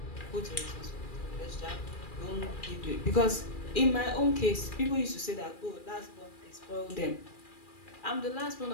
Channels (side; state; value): right; late; 2.4 ms